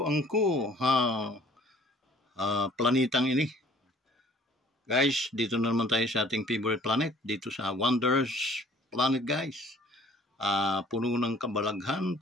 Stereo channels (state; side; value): normal; both; correlation 0.54